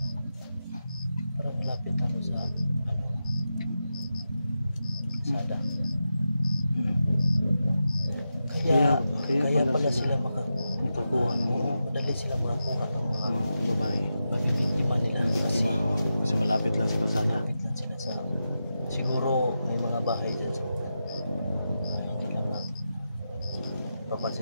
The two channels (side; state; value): both; inverted; correlation -0.89